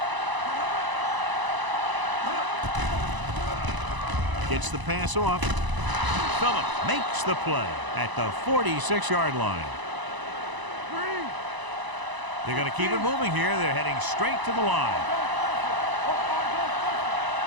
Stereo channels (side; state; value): left; late; 1.0 ms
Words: Gets the pass off. Phillip makes the play at the 46-yard line. They're going to keep it moving here. They're heading straight to the line.